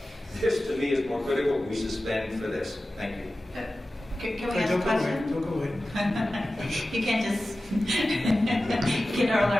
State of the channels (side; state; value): both; normal; correlation 0.95